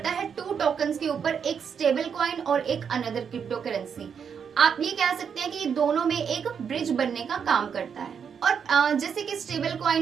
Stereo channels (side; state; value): left; quieter; 7.0 dB